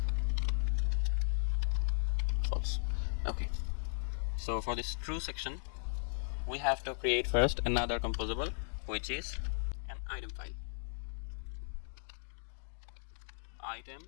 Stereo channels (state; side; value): silent; right; digital silence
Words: false. Okay, so for this true section, we have to create first another composable, which is an item file.